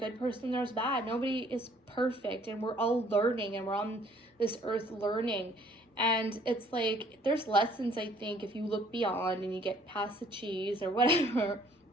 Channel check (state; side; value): normal; both; correlation 0.59